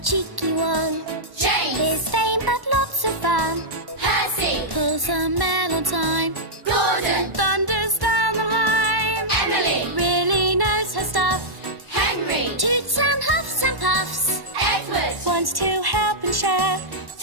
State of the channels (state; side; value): late; left; 1.1 ms